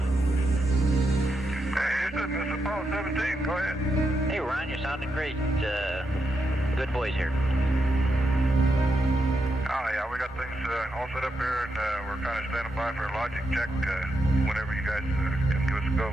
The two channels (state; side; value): normal; both; correlation 0.84